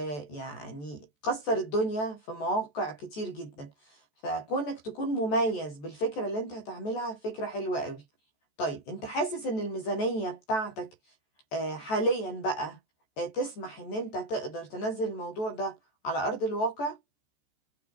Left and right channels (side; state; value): right; late; 14 ms